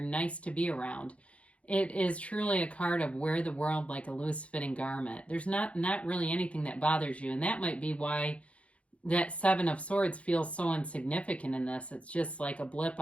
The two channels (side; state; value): right; late; 0.063 ms